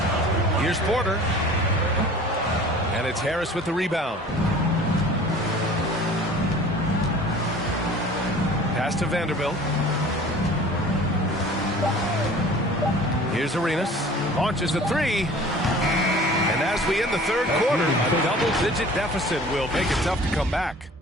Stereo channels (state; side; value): normal; both; correlation 0.45